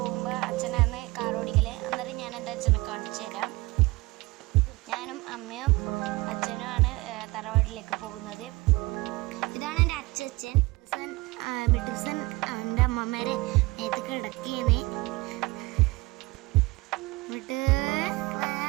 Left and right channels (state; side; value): quieter; left; 22.2 dB